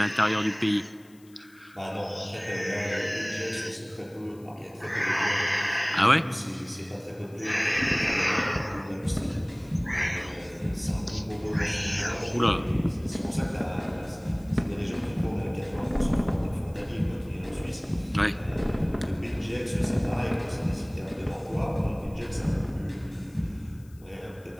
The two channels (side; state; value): left; noise; hiss, 29 dB below the sound